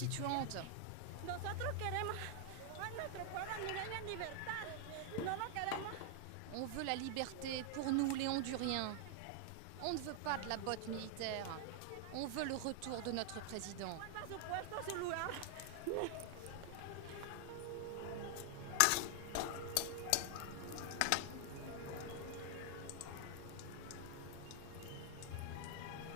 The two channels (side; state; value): both; different; correlation 0.00